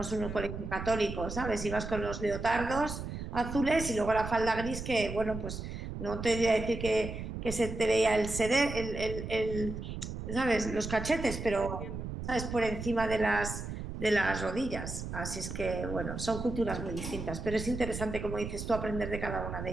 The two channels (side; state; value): right; noise; rumble, 7 dB below the sound